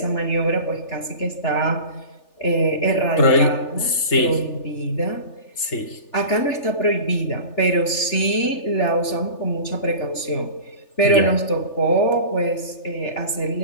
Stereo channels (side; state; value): right; late; 3.4 ms